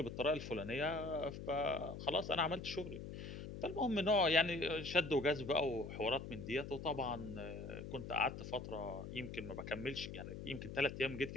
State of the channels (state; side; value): noise; left; hum, 9 dB below the sound